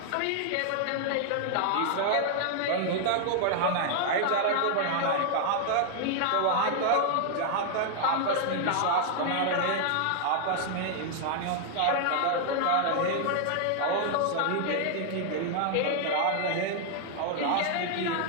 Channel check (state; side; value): different; both; correlation 0.00